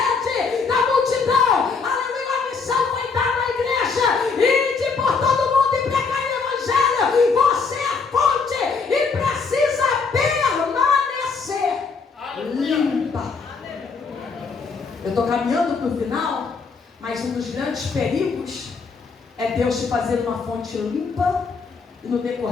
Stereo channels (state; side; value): quieter; right; 4.9 dB